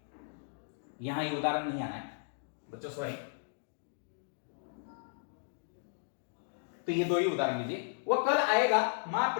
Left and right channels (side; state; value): right; silent; digital silence